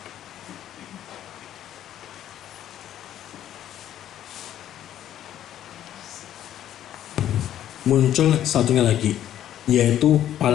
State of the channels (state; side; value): quieter; right; 11.4 dB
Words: Muncul satunya lagi, yaitu